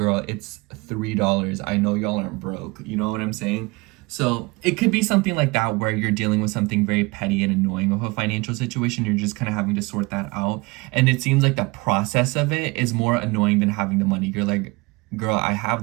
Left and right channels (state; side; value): quieter; left; 24.9 dB